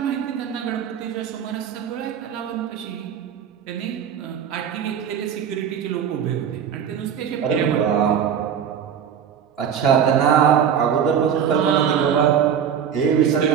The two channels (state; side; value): quieter; left; 8.3 dB